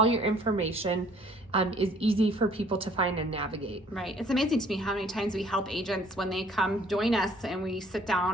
your information is easy for people to find and navigate. Right. It's amazing to me how many times we help agents when they come join us and we sit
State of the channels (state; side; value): normal; both; correlation 0.58